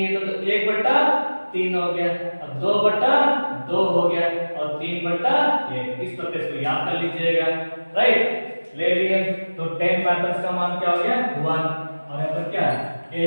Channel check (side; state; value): both; inverted; correlation -1.00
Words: थे, तो 1/3 हो गया, अब 2/2 हो गया और 3/1। इस प्रकार से याद कर लीजिएगा, राइट। ले लिए तो 10 का मान क्या हो गया 1, और यहाँ पर क्या